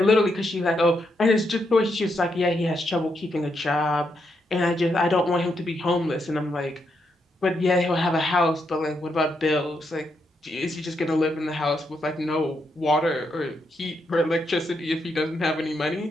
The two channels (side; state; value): both; normal; correlation 0.80